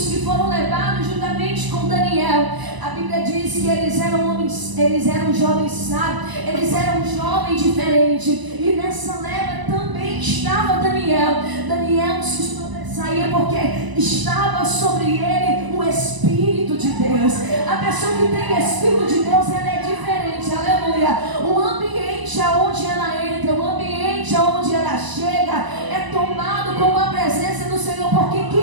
que foram levados juntamente com Daniel. A Bíblia diz que eles eram homens, eles eram jovens sábios, eles eram jovens diferentes. E nessa leva também estava Daniel. Daniel se sobressaía porque estava sobre ele o Espírito de Deus. A pessoa que tem Espírito de Deus, ela é diferente, aleluia. O ambiente aonde ela entra, o ambiente aonde ela chega é tomado com a presença do Senhor, porque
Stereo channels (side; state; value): left; late; 1.0 ms